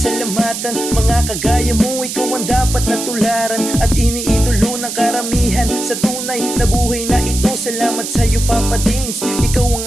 Mga kagaya mo, ikaw ang dapat natularan at iniidolo ng karamihan sa tunay na buhay na ito. Salamat sa'yo Papa Dins, ikaw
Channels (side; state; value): right; noise; hiss, 6 dB below the sound